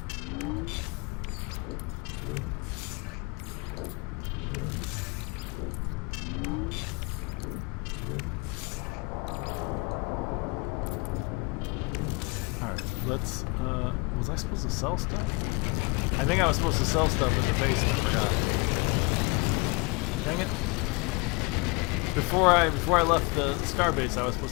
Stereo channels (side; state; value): right; quieter; 28.7 dB